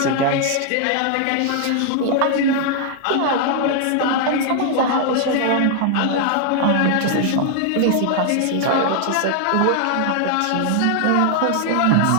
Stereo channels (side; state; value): both; different; correlation 0.00